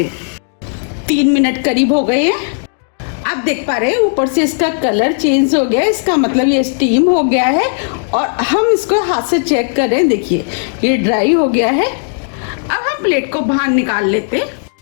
हैं। 3 मिनट करीब हो गए हैं। आप देख पा रहे हैं ऊपर से इसका कलर चेंज हो गया है। इसका मतलब ये स्टीम हो गया है। और हम इसको हाथ से चेक कर रहे हैं। देखिए, ये ड्राई हो गया है। अब हम प्लेट को बाहर निकाल लेते हैं।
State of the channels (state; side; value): silent; right; digital silence